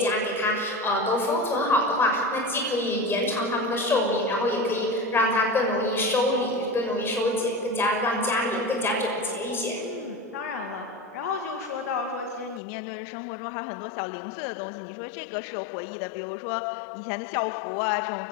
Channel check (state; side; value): drops out; right; at 12.6 s